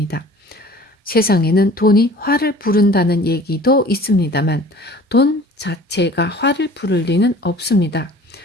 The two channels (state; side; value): normal; both; correlation 0.46